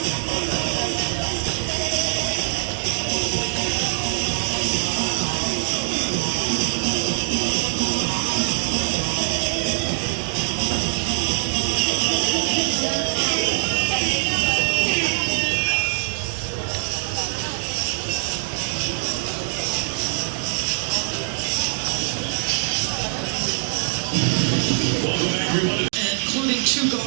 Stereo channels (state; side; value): silent; left; digital silence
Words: Welcome everyone to including two